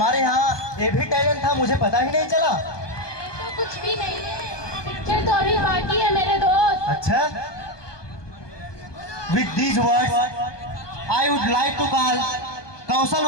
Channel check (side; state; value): right; late; 1.2 ms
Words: यहाँ ये भी टैलेंट था, मुझे पता ही नहीं चला। तो कुछ भी नहीं है, पिक्चर तो अभी बाकी है मेरे दोस्त। अच्छा, with these words I would like to call Kaushal